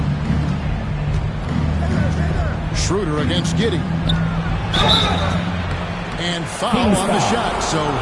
Schroeder against Giddey. And foul on the shot, so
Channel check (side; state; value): both; identical; correlation 1.00